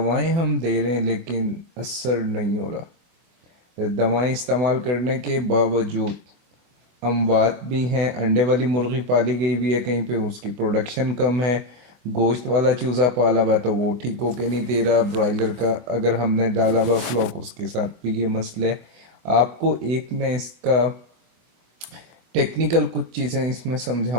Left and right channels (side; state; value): left; late; 24 ms